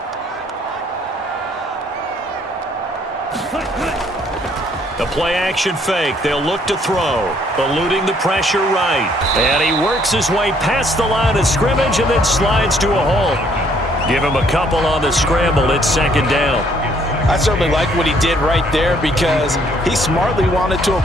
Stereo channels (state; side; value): normal; both; correlation 0.65